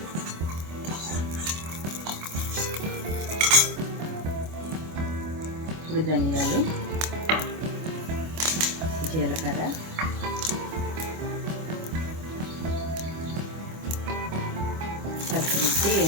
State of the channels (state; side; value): late; left; 25 ms